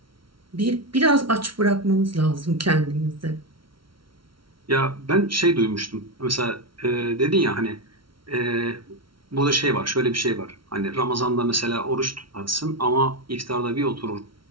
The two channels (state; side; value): late; left; 0.74 ms